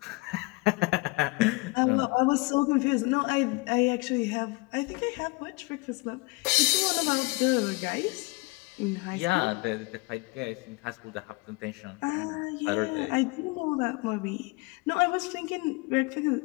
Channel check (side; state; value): right; quieter; 26.0 dB